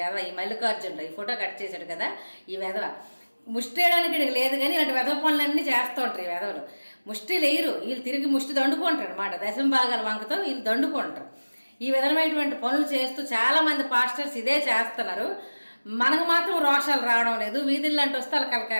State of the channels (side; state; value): both; inverted; correlation -1.00